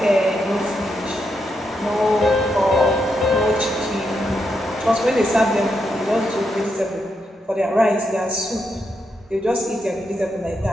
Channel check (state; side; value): normal; both; correlation 0.82